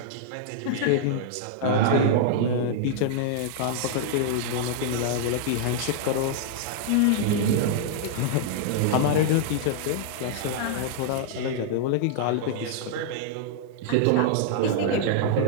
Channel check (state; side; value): different; both; correlation -0.01